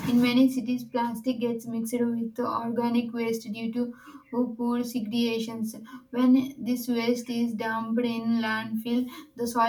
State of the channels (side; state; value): both; identical; correlation 1.00